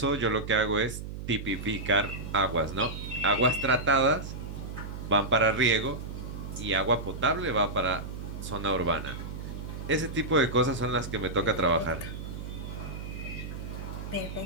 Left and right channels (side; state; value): right; noise; hum, 8 dB below the sound